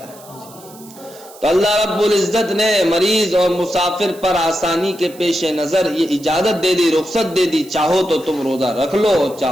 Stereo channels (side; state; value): right; noise; hiss, 21 dB below the sound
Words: تو اللہ رب العزت نے مریض اور مسافر پر آسانی کے پیش نظر یہ اجازت دے دی، رخصت دے دی، چاہو تو تم روزہ رکھ لو